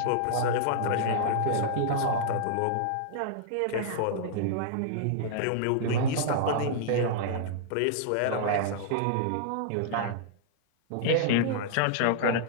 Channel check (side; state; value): both; different; correlation -0.01